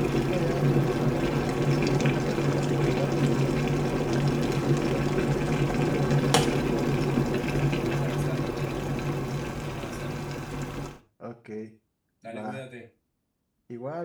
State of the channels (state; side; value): identical; both; correlation 1.00